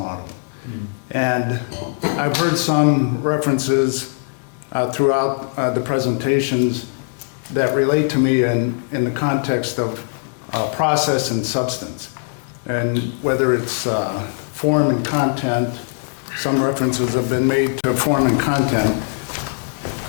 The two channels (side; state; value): right; silent; 66 dB below the other